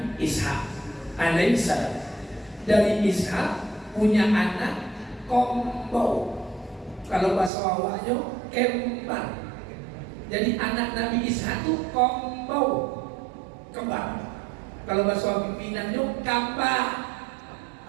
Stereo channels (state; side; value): drops out; left; at 7.5 s